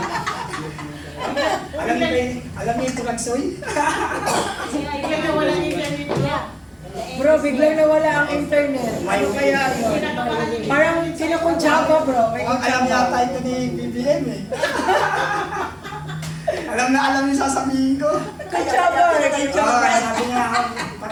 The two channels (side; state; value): both; identical; correlation 1.00